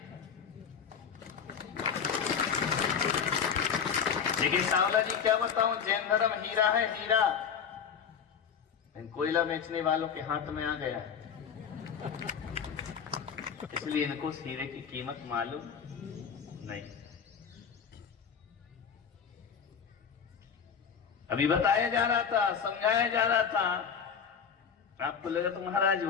देखिए सांवला जी, क्या बताऊं, जैन धर्म हीरा है, हीरा कोयला बेचने वालों के हाथ में आ गया, इसलिए इनको उस हीरे की कीमत मालूम नहीं। अभी बताया जा रहा था, समझाया जा रहा था, आपको लगा तो महाराज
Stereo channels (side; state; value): right; quieter; 7.0 dB